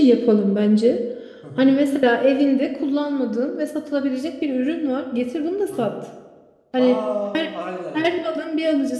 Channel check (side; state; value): both; identical; correlation 1.00